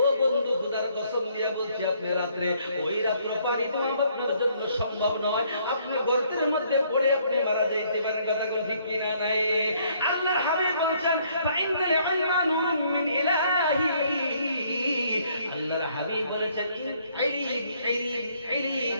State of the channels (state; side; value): inverted; both; correlation -0.66